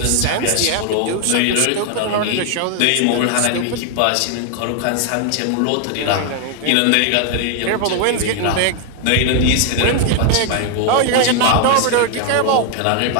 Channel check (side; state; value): both; different; correlation 0.00